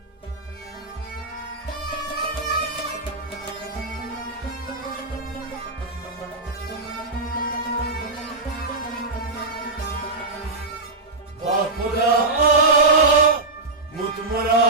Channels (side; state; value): left; quieter; 3.4 dB